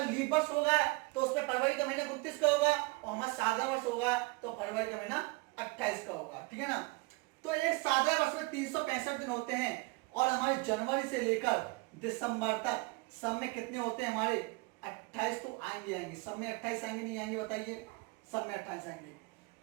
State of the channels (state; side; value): quieter; left; 26.7 dB